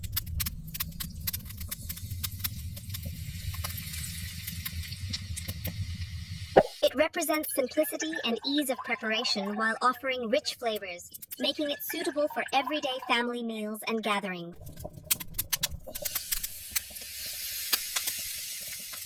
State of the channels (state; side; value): identical; both; correlation 1.00